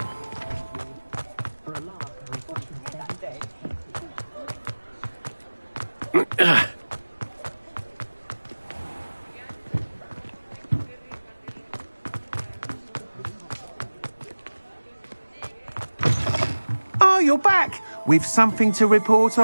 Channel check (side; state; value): both; inverted; correlation -1.00